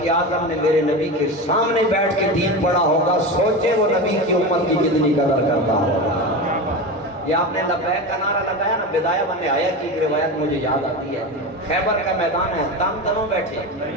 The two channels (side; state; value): both; normal; correlation 0.23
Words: اعظم نے میرے نبی کے سامنے بیٹھ کے دین پڑھا ہوگا، سوچے وہ نبی کی امت کی کتنی قدر کرتا ہوگا۔ یہ آپ نے لبیک کا نعرہ لگایا نا، بدایہ بن نہایہ کی ایک روایت مجھے یاد آتی ہے، خیبر کا میدان ہے، تن تنوں بیٹھے